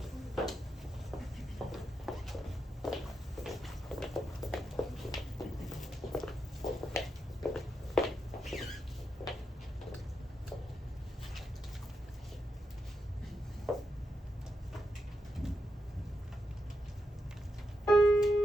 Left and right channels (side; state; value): both; normal; correlation 0.85